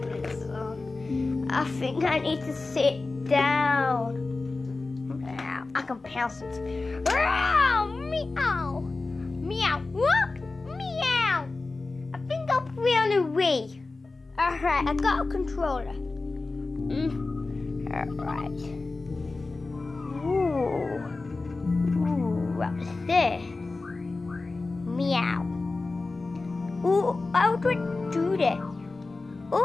I think I need to sit down. I can pounce it. Meow! Meow! What? Meow! I think I'll put it on the Wii. Alright, I got a controller. Alright. Ooh, what's this? Meow. Ooh, how do I do this?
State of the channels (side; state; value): right; quieter; 3.5 dB